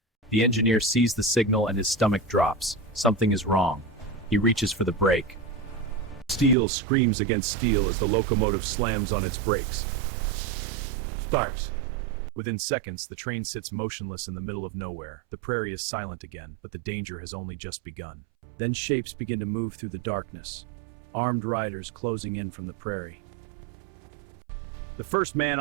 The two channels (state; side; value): drops out; left; at 6.6 s